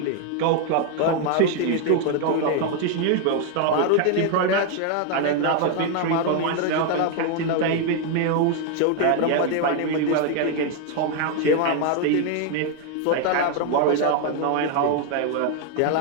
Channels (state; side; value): different; both; correlation 0.01